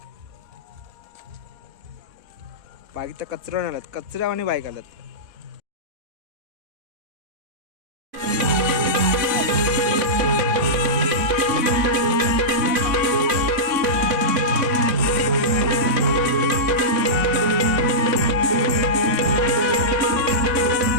बाईक तर कचरा आल्यात, कचऱ्यावानी बाईक आल्यात.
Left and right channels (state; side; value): late; left; 4.1 ms